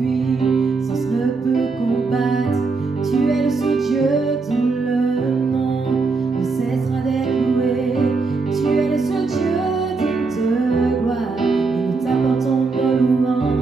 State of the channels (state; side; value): quieter; left; 4.2 dB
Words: ne peut combattre. Tu es le seul Dieu dont le nom ne cessera d'être loué. Tu es le seul Dieu digne de gloire et nous t'apportons nos